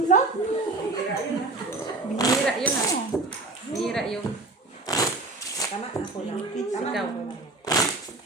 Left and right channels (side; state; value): left; quieter; 3.3 dB